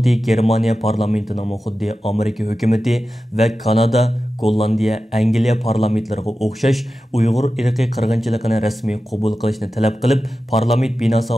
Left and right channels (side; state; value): both; normal; correlation 0.93